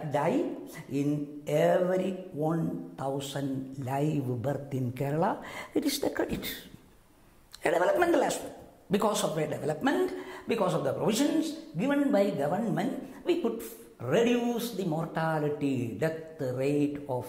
die in every 1,000 live birth in Kerala. It is the credit, a developmental aspect. Because of a development, because of the provisions given by government, we could reduce the mortality death rate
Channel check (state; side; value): identical; both; correlation 1.00